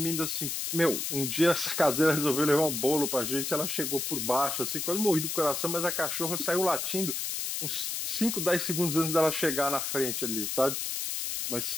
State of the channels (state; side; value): noise; left; hiss, 2 dB below the sound